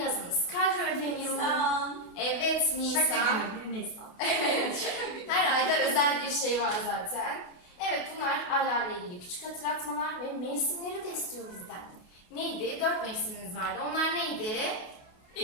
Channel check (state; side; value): late; right; 28 ms